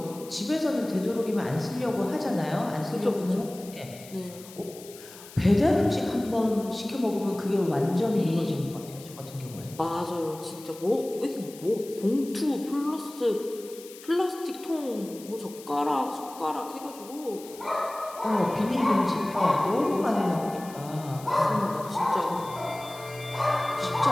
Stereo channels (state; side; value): noise; left; hiss, 18 dB below the sound